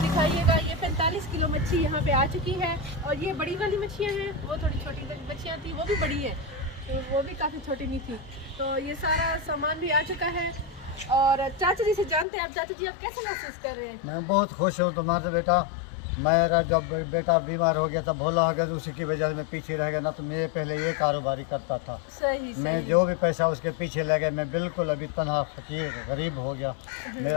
ये 45 किलो मच्छी यहाँ पे आ चुकी है, और ये बड़ी वाली मच्छियाँ हैं, वो थोड़ी छोटी मच्छियाँ थी, वो भी बड़ी है, तो वो भी काफ़ी छोटी नहीं थी। तो ये सारा सामान भी आ चुका है, और चाचा जी से जानते हैं आप, चाचा जी आप कैसे महसूस कर रहे हैं? मैं बहुत खुश हूँ तुम्हारे बेटा। मेरा जब बेटा बीमार हो गया था, भोला हो गया, तो उसी की वजह से मैं पीछे रह गया ना, तो मैं पहले ये कारोबारी करता था। सही मैं जो भी पैसा उसके पीछे लगे, मैं बिल्कुल अभी तनहा फकीर गरीब हो गया,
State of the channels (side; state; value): right; drops out; at 12.2 s